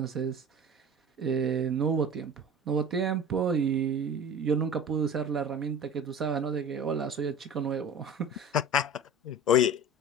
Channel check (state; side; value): normal; both; correlation 0.37